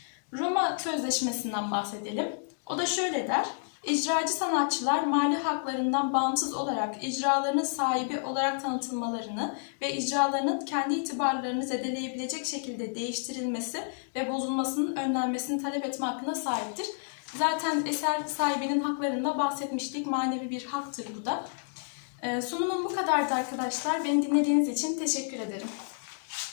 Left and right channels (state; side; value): silent; right; digital silence